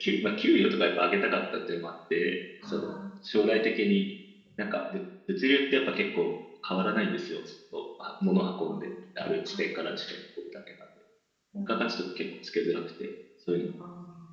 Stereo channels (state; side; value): identical; both; correlation 1.00